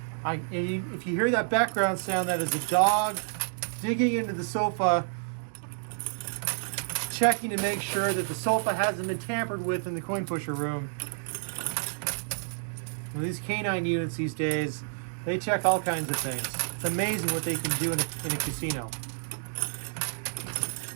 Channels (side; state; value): left; silent; digital silence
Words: If you hear that background sound, that is a dog digging into the sofa, checking to make sure that the sofa hasn't been tampered with in the coin pusher room. Now, these canine units these days, they check all kinds of things. It's amazing what they can do in a casino.